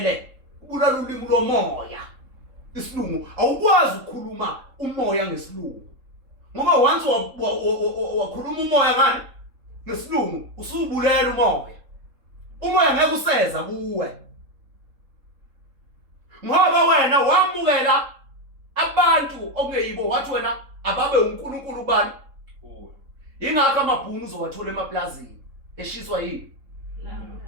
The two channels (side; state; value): left; late; 3.7 ms